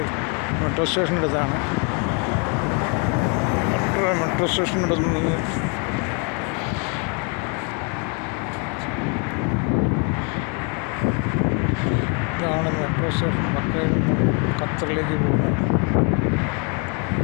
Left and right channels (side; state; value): right; quieter; 35.4 dB